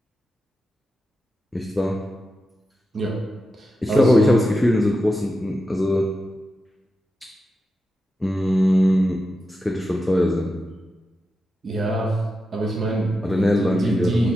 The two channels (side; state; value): both; normal; correlation 0.89